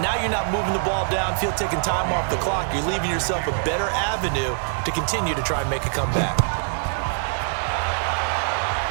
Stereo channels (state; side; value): silent; left; digital silence